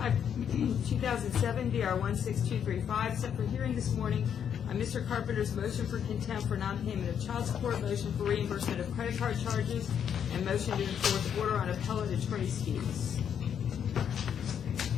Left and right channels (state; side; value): quieter; right; 8.4 dB